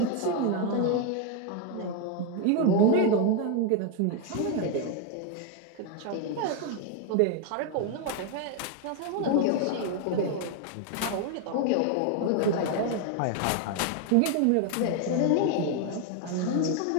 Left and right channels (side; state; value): both; different; correlation 0.01